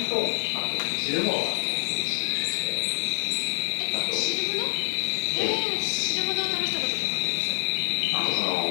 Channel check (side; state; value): right; silent; 61 dB below the other